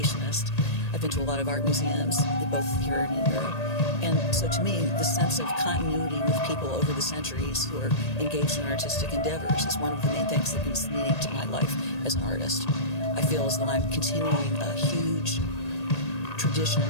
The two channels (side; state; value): right; late; 1.8 ms